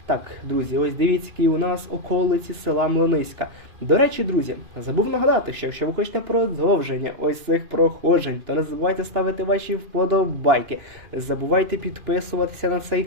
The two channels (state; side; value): late; left; 2.8 ms